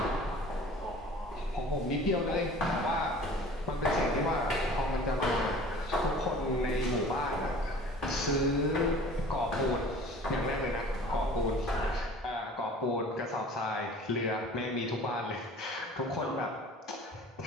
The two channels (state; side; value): normal; both; correlation 0.45